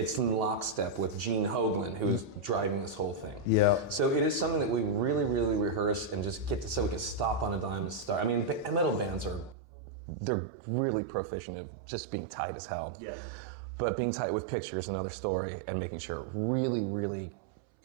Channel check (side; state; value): left; drops out; at 9.6 s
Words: in lockstep with Gene Hoglan, who is driving this whole thing. So it is something that we really, really rehearse and just get to, so we can stop on a dime and start. I mean, metal bands they're really proficient at just being tight as hell. But being tight with pictures, another story, and making sure it really, really